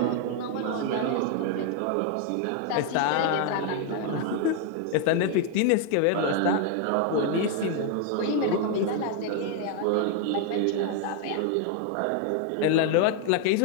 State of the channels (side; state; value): both; different; correlation 0.00